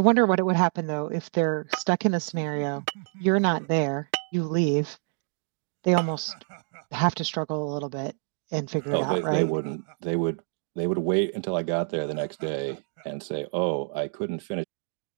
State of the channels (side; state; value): left; silent; 55 dB below the other